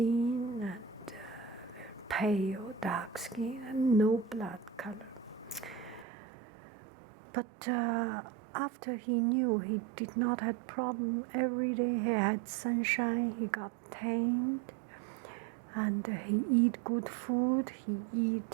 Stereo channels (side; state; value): left; drops out; at 6.1 s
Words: and pale dark skin and no blood color. But after he knew he did not have problem, every day he had sunshine, he got tanned, and he eat good food, he